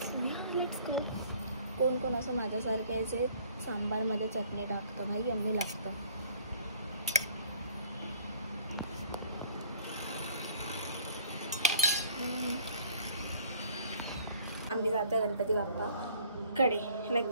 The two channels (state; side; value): inverted; both; correlation -0.56